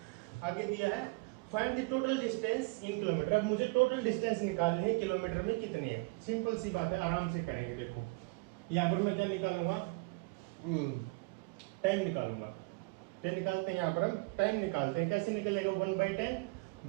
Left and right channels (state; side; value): quieter; left; 26.2 dB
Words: आगे दिया है find the total distance in kilometre, अब मुझे टोटल डिस्टेंस निकालनी है, किलोमीटर में कितनी है, सिंपल सी बात है, आराम से करेंगे। देखो यहाँ पर मैं क्या निकालूंगा, टाइम निकालूंगा, टाइम निकालते हैं, यहाँ पर हम टाइम निकालते हैं, कैसे निकलेगा, 1/10